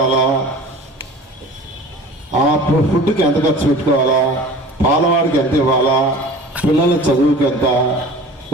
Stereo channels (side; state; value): both; normal; correlation 0.41